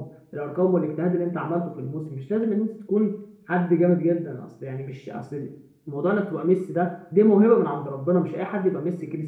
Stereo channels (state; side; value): identical; both; correlation 1.00